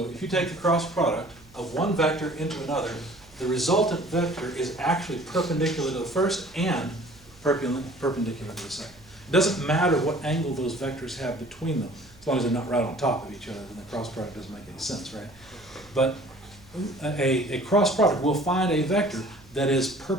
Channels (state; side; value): noise; right; hum, 25 dB below the sound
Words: if you take the cross product of one vector into another, the resultant vector is actually perpendicular to the first and perpendicular to the second. It doesn't matter what angle those vectors have between them, as long as they're not right on top of each other, then the cross product doesn't make any sense, right? But a cross product will find a vector that is